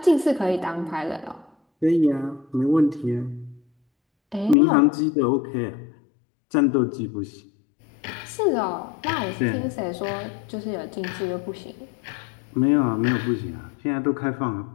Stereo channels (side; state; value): right; drops out; at 4.5 s